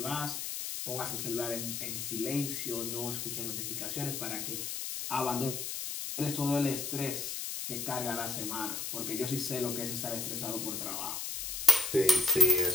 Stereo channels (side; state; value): left; noise; hiss, 4 dB below the sound